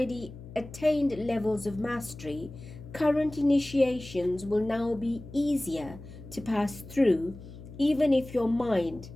attained levels of mastery, current initiations will now be easier to pass through, even if your mind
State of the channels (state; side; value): noise; left; hum, 15 dB below the sound